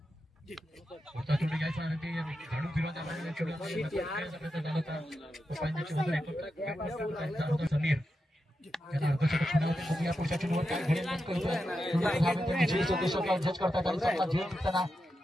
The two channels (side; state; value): both; normal; correlation 0.88